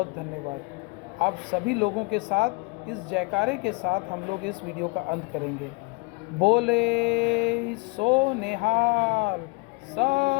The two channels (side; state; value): right; quieter; 26.9 dB